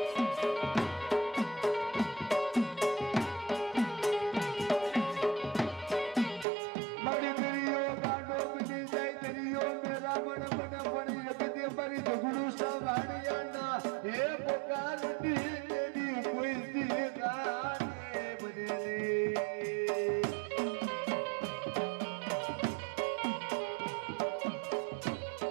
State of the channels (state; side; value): drops out; left; at 6.5 s